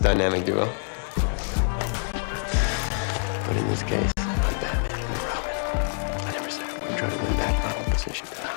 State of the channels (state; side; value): silent; right; 61 dB below the other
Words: duo. But in this case, I'm Batman and you're Robin. I never said I wouldn't try to win back my own position.